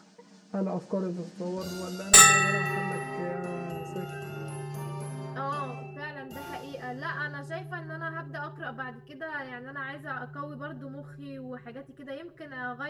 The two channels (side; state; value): both; identical; correlation 1.00